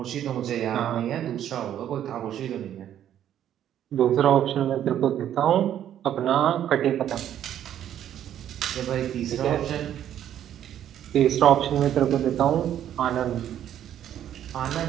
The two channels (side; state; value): left; quieter; 10.7 dB